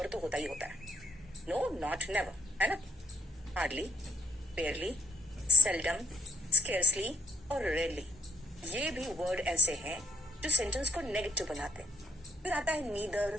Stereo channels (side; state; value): both; normal; correlation 0.67